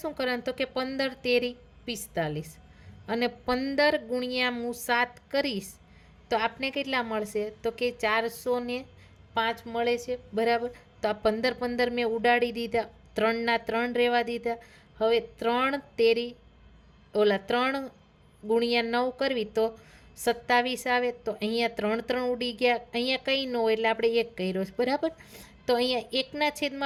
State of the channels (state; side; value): identical; both; correlation 1.00